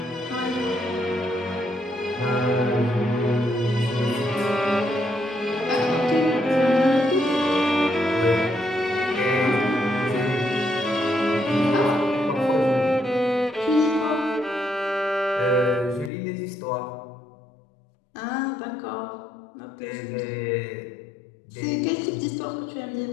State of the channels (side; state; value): right; drops out; at 16.1 s